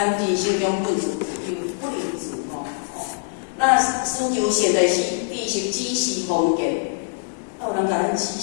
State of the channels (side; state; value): right; silent; digital silence